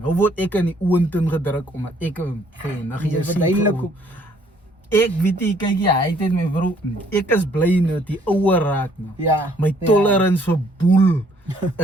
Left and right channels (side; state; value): both; normal; correlation 0.63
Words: word ek in die oontin gedruk omdat ek vir jou niggie Jy is. verduidelik hoe- Ek weet nie, kyk jy, hy het my broer. Ek is bly net die ouer raak nou. Ja. My tolerance vir boel